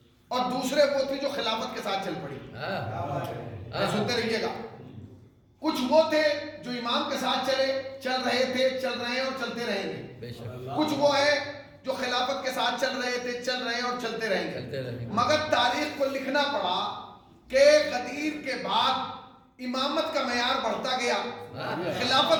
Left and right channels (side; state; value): both; identical; correlation 1.00